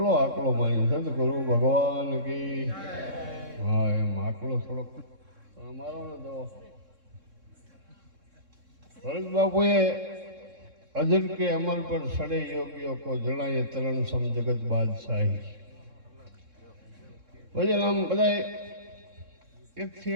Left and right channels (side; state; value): left; late; 3.6 ms